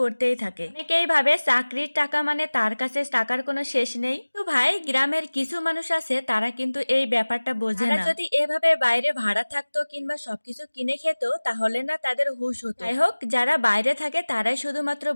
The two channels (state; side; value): inverted; both; correlation -1.00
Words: থাকে। অনেকেই ভাবে চাকরির টাকা মানে তার কাছে টাকার কোনো শেষ নেই। তো ভাই, গ্রামের কিছু মানুষ আছে তারা কিন্তু এই ব্যাপারটা বোঝে না। যদি এভাবে বাইরে ভাড়া থাকতো কিংবা সবকিছু কিনে খেত তাহলে না তাদের হুঁশ হতো। যাই হোক, যারা বাইরে থাকে তারাই শুধুমাত্র